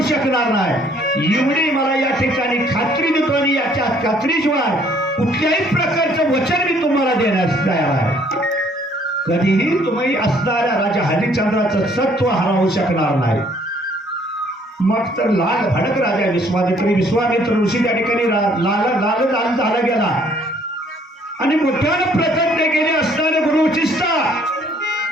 शकणार नाही. एवढी मला या ठिकाणी खात्री देतो आणि याच्या खात्रीशिवाय कुठल्याही प्रकारचं वचन मी तुम्हाला देण्यास तयार आहे. कधीही तुम्ही असणाऱ्या राजा हरिश्चंद्राचं सत्व हरवू शकणार नाही. मग तर लाल भडक राजा विश्वामित्र ऋषी त्या ठिकाणी लाल झाला गेला आणि मोठ्यानं प्रतिज्ञा केली, असणारे गुरु वशिष्ठा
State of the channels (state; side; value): normal; both; correlation 0.62